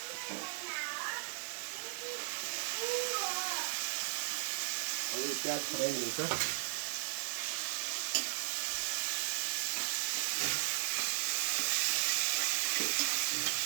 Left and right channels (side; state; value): left; silent; digital silence